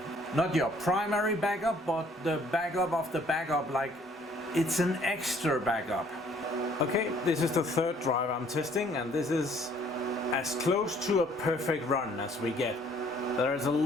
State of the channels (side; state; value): both; normal; correlation 0.60